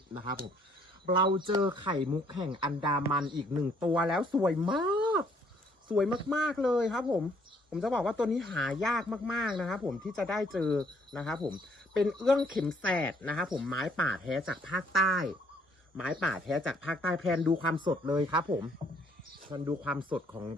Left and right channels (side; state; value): both; normal; correlation 0.65